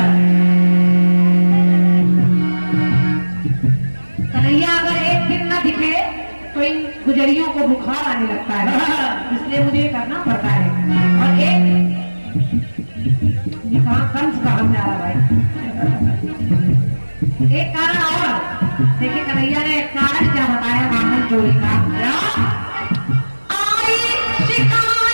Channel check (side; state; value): both; inverted; correlation -1.00